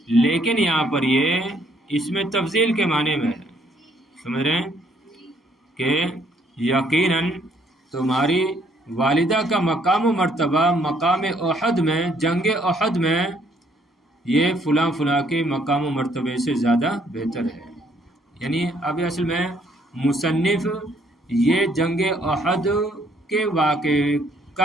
لیکن یہاں پر یہ اس میں تفضیل کے معنی میں ہے. سمجھ رہے ہیں کہ یقیناً تمہاری والدہ کا مقام و مرتبہ مقام احد میں، جنگ احد میں، یہ فلاں فلاں کے مقام و مرتبے سے زیادہ بہتر ہے. یعنی اب اصل میں مصنف یہ جنگ احد کے واقعے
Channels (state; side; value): normal; both; correlation 0.66